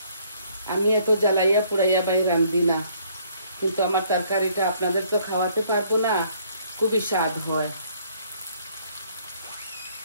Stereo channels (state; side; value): inverted; both; correlation -0.64